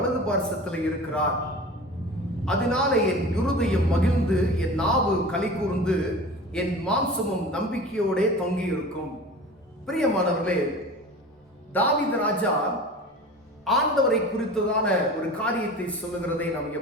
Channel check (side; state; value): both; normal; correlation 0.37